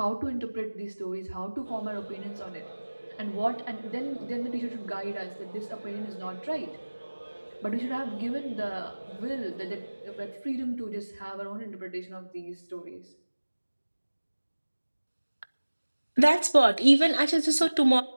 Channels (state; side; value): inverted; both; correlation -1.00